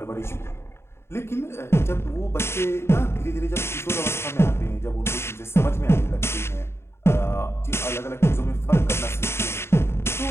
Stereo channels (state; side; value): late; right; 0.12 ms